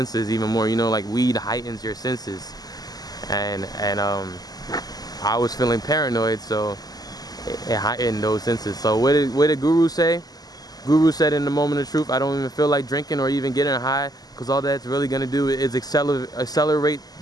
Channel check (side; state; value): right; late; 0.19 ms